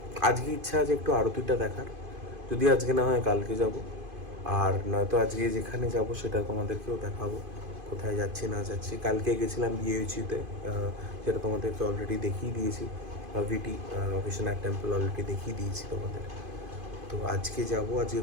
আজকে ইচ্ছা আছে একটু আরতিটা দেখার, যদি আজকে না হয় কালকে যাব। আর নয়তো আজকে যেখানে যাব সেটা তোমাদেরকেও দেখাবো, কোথায় যাচ্ছি না যাচ্ছি। কালকে গেছিলাম বিএইচিতে, যেটা তোমাদেরকে অলরেডি দেখিয়ে দিয়েছি। ভিটি বিশ্বনাথ টেম্পল অলরেডি দেখিয়ে দিয়েছি তোমাদের। তো আজকে যাব, আজকে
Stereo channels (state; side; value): late; left; 2.5 ms